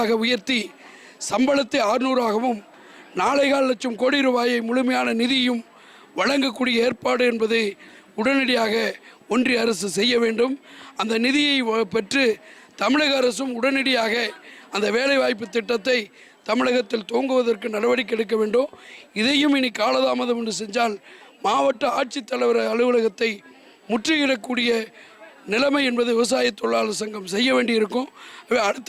உயர்த்தி சம்பளத்தை 600ஆகவும் 4.25 லட்சம் கோடி ரூபாயை முழுமையான நிதியும் வழங்கக்கூடிய ஏற்பாடு என்பதை உடனடியாக ஒன்றிய அரசு செய்ய வேண்டும். அந்த நிதியை பெற்று தமிழக அரசும் உடனடியாக அந்த வேலைவாய்ப்பு திட்டத்தை தமிழகத்தில் துவங்குவதற்கு நடவடிக்கை எடுக்க வேண்டும். இதையும் இனி காலதாமதம் என்று செஞ்சால் மாவட்ட ஆட்சித்தலைவர் அலுவலகத்தை முற்றுகையிடக்கூடிய நிலைமை என்பது விவசாய தொழிலாளர் சங்கம் செய்ய வேண்டியிருக்கும். அடுத்த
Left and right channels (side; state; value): both; identical; correlation 1.00